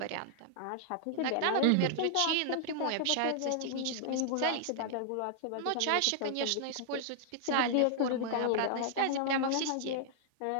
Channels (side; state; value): both; different; correlation -0.01